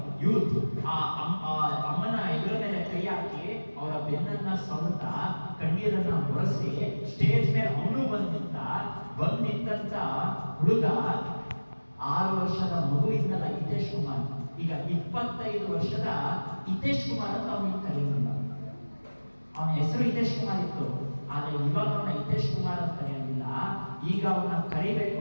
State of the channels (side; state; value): both; inverted; correlation -1.00